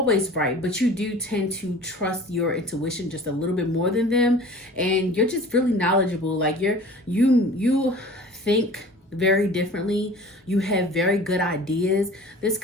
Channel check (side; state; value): both; normal; correlation 0.43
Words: right, but you do tend to trust your intuition just a little bit more than them, and you're just really knowledgeable. Like you think very differently. You have very good ideas. This